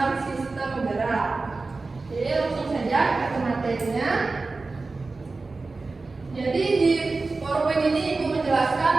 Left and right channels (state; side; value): quieter; left; 3.7 dB